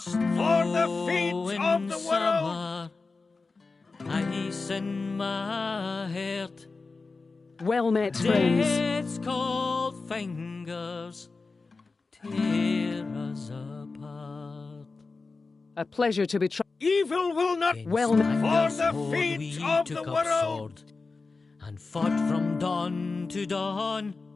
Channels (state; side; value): quieter; right; 4.0 dB